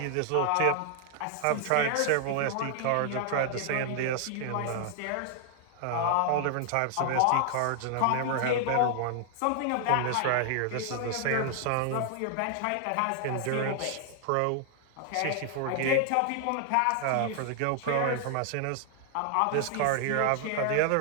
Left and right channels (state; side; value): different; both; correlation 0.00